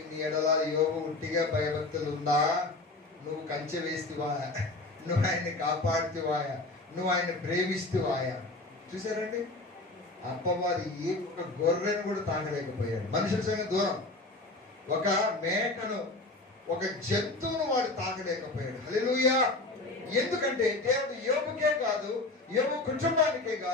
ఎడల యోబు ఉట్టిగా భయభక్తులు ఉందా? నువ్వు కంచె వేస్తువా? నువ్వు ఆయన్ని కాపాడుతువాయా? నువ్వు ఆయన ప్రేమిస్తువాయా? చూసారండి, అప్పవాది ఏ ఒక గొర్రెను కూడా తాగలేకపోయాడు. మనుషుల సంగతి దూరం, ఒక మేకను, ఒక జంతువును వాడు తాగలేకపోయాడు. హల్లెలూయా. ఎందుకంటే దేవుడు యోబుకే కాదు, యోబు కుటుంబానికే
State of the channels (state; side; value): quieter; right; 3.0 dB